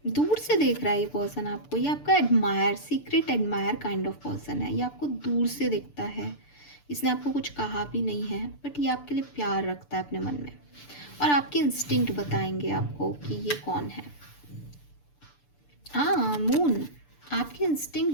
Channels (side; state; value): right; late; 6.8 ms